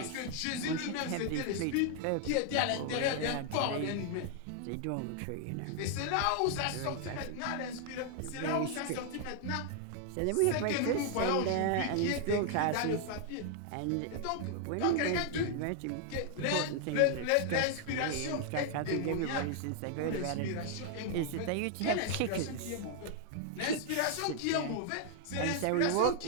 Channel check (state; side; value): different; both; correlation 0.00